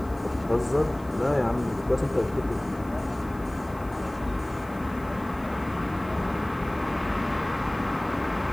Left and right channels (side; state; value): left; noise; hiss, 26 dB below the sound